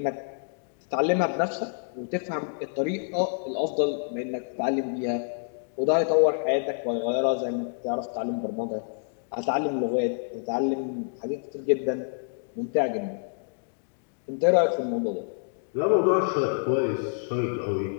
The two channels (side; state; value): right; silent; digital silence